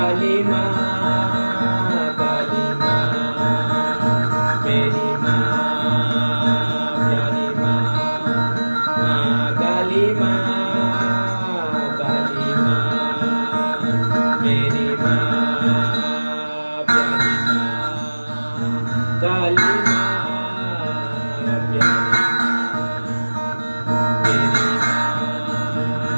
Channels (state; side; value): inverted; both; correlation -1.00